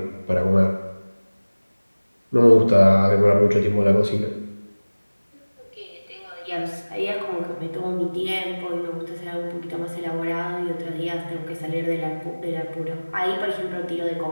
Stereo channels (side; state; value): both; inverted; correlation -1.00